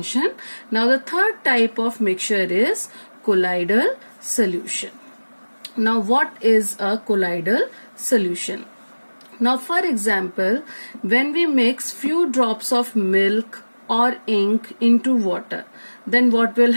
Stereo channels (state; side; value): inverted; both; correlation -1.00